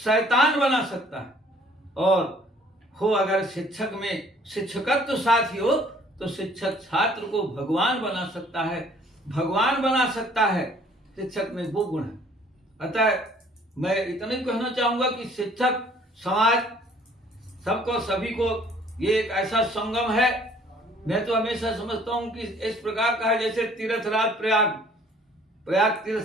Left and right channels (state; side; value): normal; both; correlation 0.57